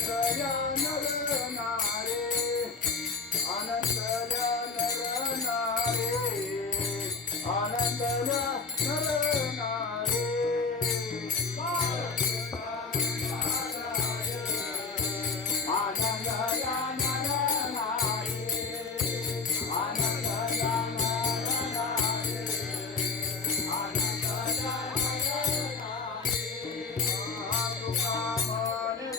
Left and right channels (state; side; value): quieter; right; 4.7 dB